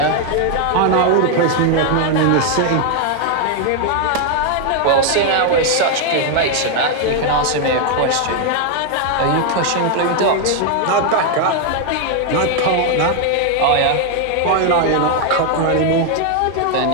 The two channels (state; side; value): different; both; correlation 0.00